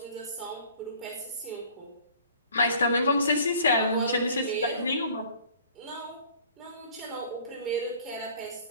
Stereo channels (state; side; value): inverted; both; correlation -0.51